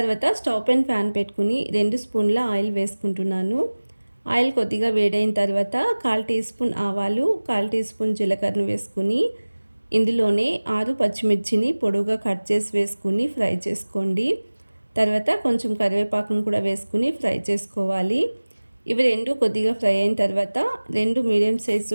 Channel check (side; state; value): both; inverted; correlation -1.00